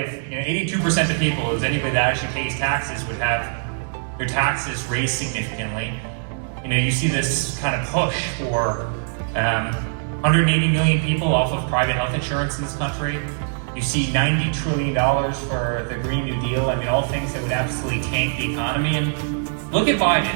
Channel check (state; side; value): silent; left; digital silence